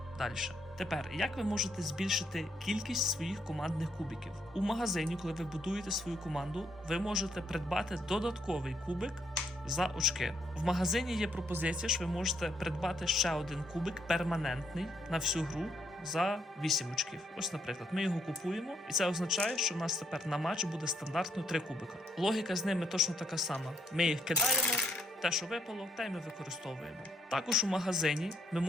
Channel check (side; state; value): both; normal; correlation 0.73